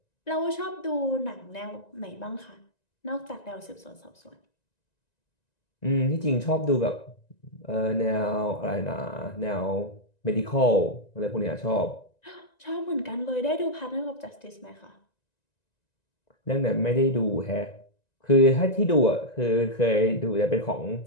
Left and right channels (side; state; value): right; late; 1.9 ms